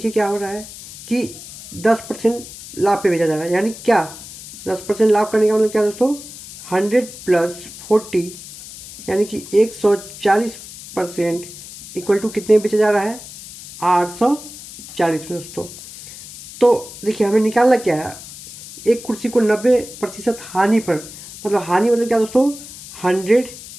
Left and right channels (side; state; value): left; noise; hiss, 15 dB below the sound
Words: क्या हो रहा है कि 10% लाभ पे बेचा जा रहा है। यानी क्या 10% लाभ करने का मतलब क्या दोस्तों, 100 + 40 यानी कि 140% इक्वल टू कितने में बेचा जा रहा है, 840 में दोस्तों। तो देखिए हमें निकालना क्या है, एक कुर्सी को 90% हानि पर, मतलब हानि मतलब क्या दोस्तों, 100